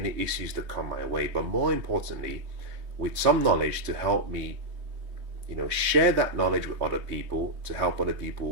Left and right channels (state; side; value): late; left; 3.2 ms